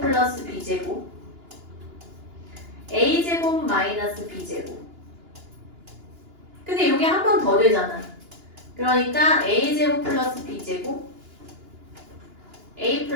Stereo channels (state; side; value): late; left; 2.9 ms